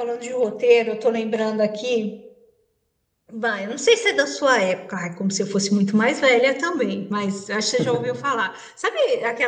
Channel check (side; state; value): both; identical; correlation 1.00